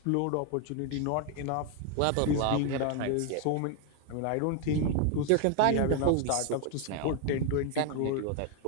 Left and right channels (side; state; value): both; different; correlation 0.01